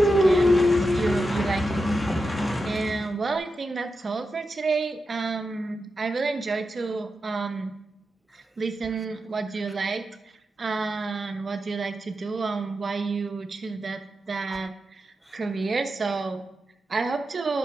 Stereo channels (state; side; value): normal; both; correlation 0.89